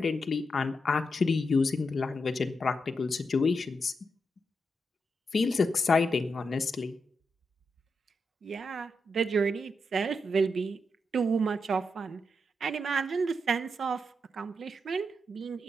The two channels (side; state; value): both; normal; correlation 0.85